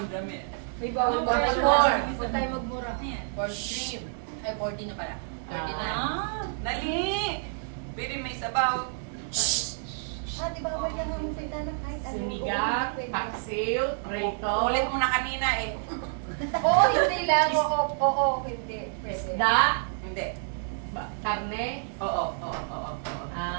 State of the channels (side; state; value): left; silent; digital silence